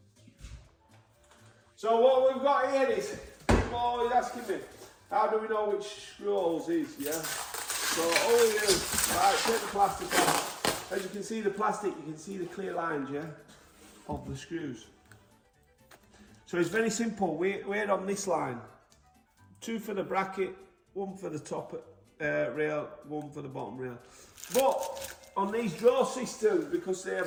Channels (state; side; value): identical; both; correlation 1.00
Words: So what we've got here is, people are always asking me, how do we know which screw holes is, yeah? So all we do, right, take the plastic off. As you can see the plastic, you can see the clear lines, yeah, of the screws. So it's very simple, we're on this line. 2 for the bracket, 1 for the top rail, 1 for the bottom rail. But on these draw systems, because they